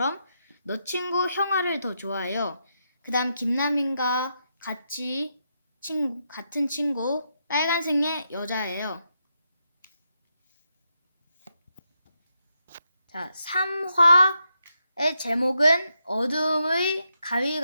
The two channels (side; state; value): both; inverted; correlation -0.83